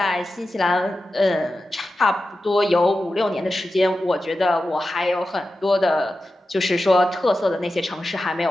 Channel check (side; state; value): both; normal; correlation 0.92